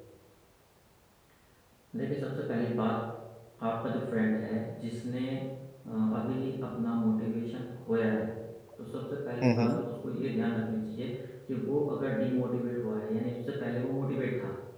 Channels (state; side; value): identical; both; correlation 1.00